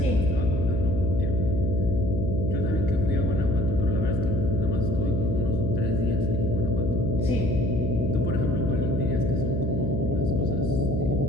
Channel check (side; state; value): left; noise; hum, 1 dB below the sound